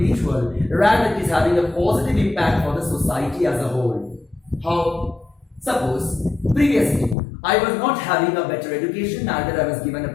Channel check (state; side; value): drops out; right; at 7.2 s